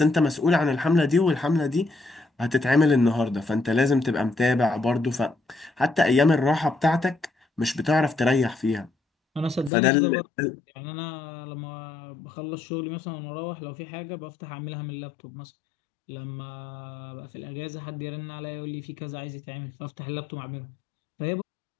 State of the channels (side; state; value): right; drops out; at 9.7 s